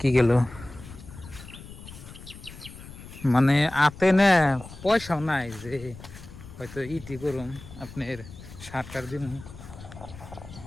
গেল। মানে আতে না পয়সাও নাই যে হয়তো ইটি করুম আপনার সারটার দিন।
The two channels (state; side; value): noise; left; rumble, 16 dB below the sound